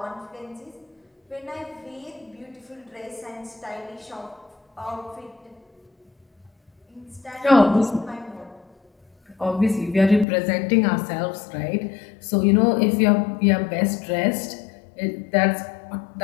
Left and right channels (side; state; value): right; drops out; at 10.2 s